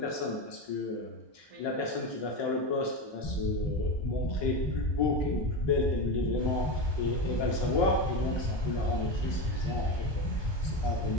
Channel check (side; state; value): right; late; 1.2 ms